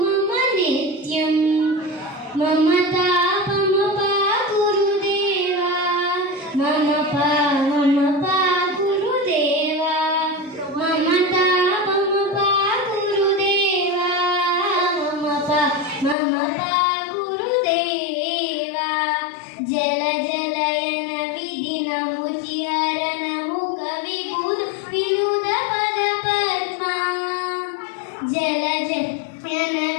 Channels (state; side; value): drops out; right; at 16.2 s